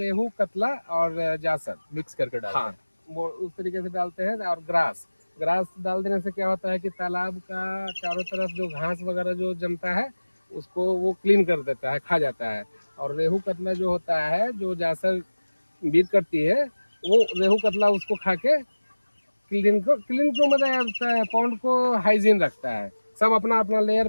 रेहू, कतला और जासर मिक्स करके डालते हाँ, हैं? वो उस तरीके से डालते हैं। और ग्रास डाल देने से क्या होता है कि तालाब का चारों तरफ जो घास वगैरह जो जमता है उसको वो क्लीन कर देता है, खा जाता है। और रेहू कतला जो होता है, जो जासर बीट करती है, वो रेहू कतला उसको खा के क्लीन को मतलब पॉन्ड को हाइजीन रखता है। सब अपना अपना लेयर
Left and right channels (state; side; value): inverted; both; correlation -1.00